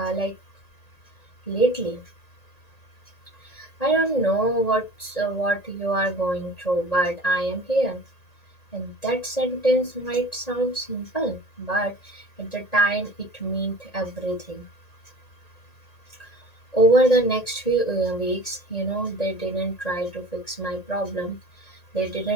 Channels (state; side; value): late; right; 1.9 ms